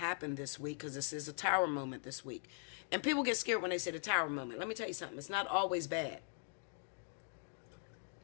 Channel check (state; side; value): silent; right; 51 dB below the other